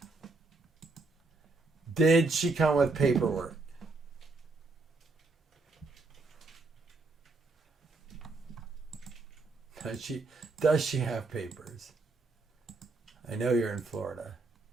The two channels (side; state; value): left; quieter; 3.6 dB